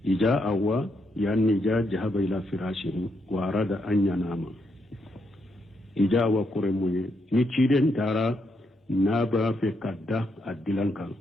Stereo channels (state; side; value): normal; both; correlation 0.78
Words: إجاء أوا يعني جاء جهب إلى فراشه وأراد أن ينام إجاء وقرمي نتشيرين تارا نابا في كداء دلنكا